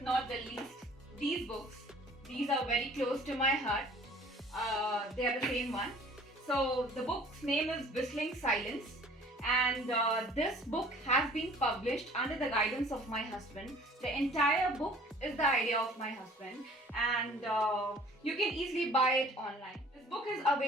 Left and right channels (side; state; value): both; normal; correlation 0.51